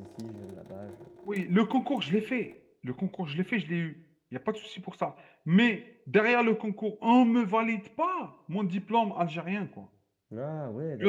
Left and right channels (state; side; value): identical; both; correlation 1.00